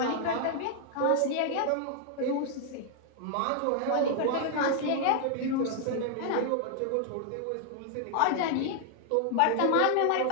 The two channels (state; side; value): different; both; correlation 0.00